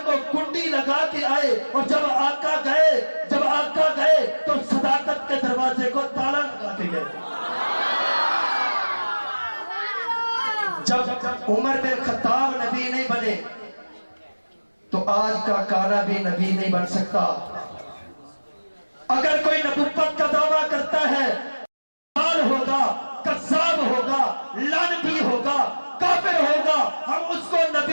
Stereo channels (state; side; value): inverted; both; correlation -1.00